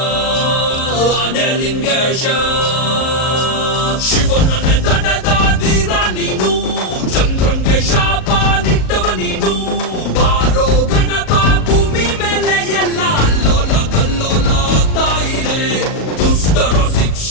ಆನೆಲಿಂಗೇಶ ಶಿವನನ್ನೇ ತಡೆದ ಧೀರ ನೀನು ಚಂದ್ರಂಗೆ ಶಾಪ ನಿಟ್ಟವ ನೀನು ಬಾರೋ ಗಣಪ ಭೂಮಿ ಮೇಲೆ ಎಲ್ಲ ಅಲ್ಲೋಲ ಕಲ್ಲೋಲ ಆಗ್ತಾ ಇದೆ ದುಷ್ಟರ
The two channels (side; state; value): right; late; 37 ms